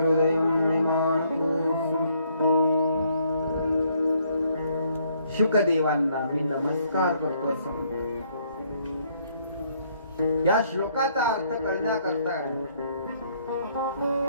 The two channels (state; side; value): inverted; both; correlation -0.68